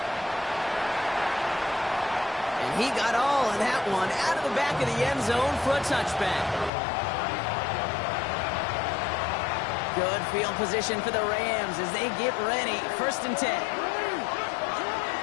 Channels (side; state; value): right; drops out; at 6.7 s